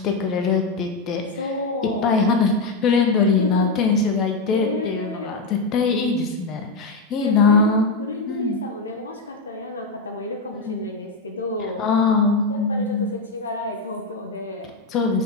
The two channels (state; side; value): quieter; right; 3.6 dB